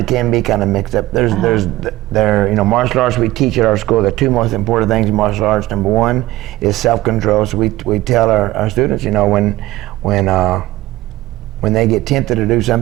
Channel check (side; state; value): left; quieter; 17.1 dB